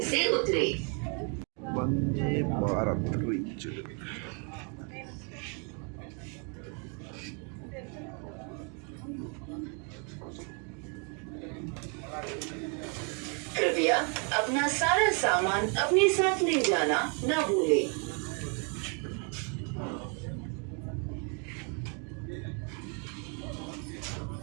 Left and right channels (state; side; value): quieter; left; 37.5 dB